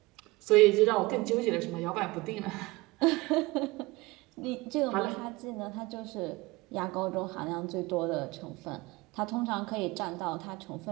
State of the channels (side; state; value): left; quieter; 21.9 dB